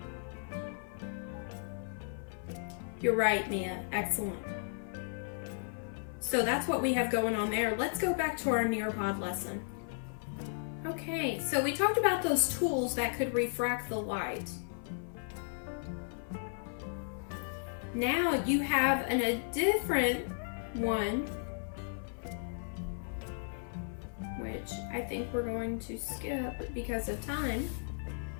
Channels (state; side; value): silent; right; 55 dB below the other